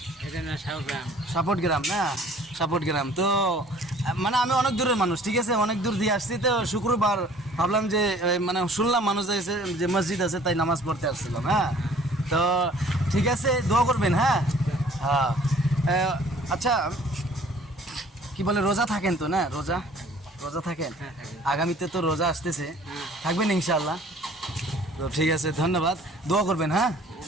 এটা না সাউগ্রাম। সাপোর্ট গ্রাম না? সাপোর্ট গ্রাম তো মানে আমি অনেক দূরের মানুষ, ঠিক আছে, অনেক দূর দিয়ে আসছি তো শুক্রবার ভাবলাম যে মানে শুনলাম মানুষ আছে যে মসজিদ আছে তাই নামাজ পড়তে আসছিলাম। হ্যাঁ, তো ঠিক আছে, দোয়া করবেন। হ্যাঁ হ্যাঁ আচ্ছা, কি বলে রোজা থাকেন তো? না, রোজা রোজা থাকেন? হ্যাঁ, থাকি। আগামীতে তো রোজা আসতেছে, হ্যাঁ। থাকবেন ইনশাআল্লাহ? তো ঠিক আছে, ধন্যবাদ। দোয়া করবেন। হ্যাঁ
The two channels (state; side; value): normal; both; correlation 0.53